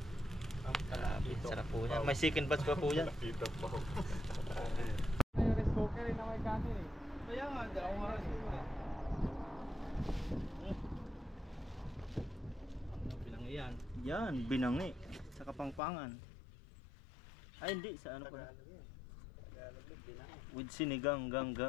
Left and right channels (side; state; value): right; drops out; at 15.8 s